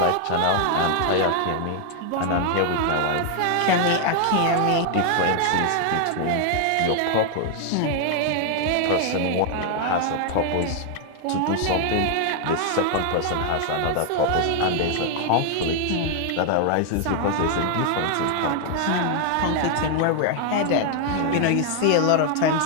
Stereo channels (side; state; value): both; different; correlation 0.00